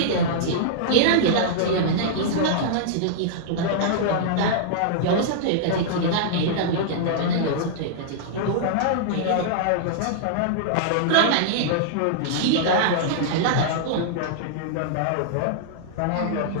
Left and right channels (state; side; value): different; both; correlation -0.02